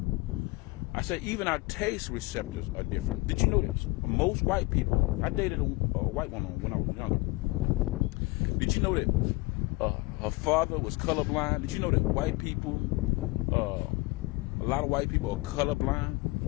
I said even our taste receptors are different. Did you know this? Most white people, I dated a white woman when I was younger. Did you know that her father was colorblind? Did you know that white people, a lot of white people are colorblind?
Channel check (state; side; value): quieter; right; 23.5 dB